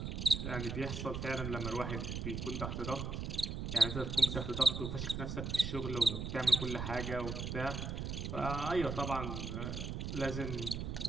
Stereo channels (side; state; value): right; noise; rumble, 4 dB below the sound